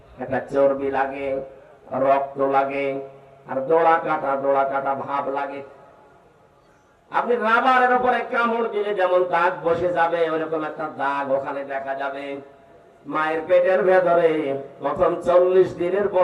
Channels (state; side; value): identical; both; correlation 1.00